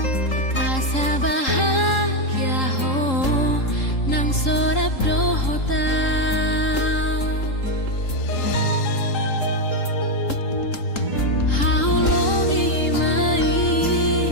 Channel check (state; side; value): late; right; 3.8 ms